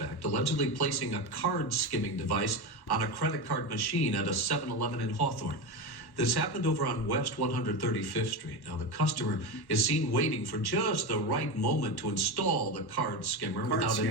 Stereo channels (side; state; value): right; late; 1.1 ms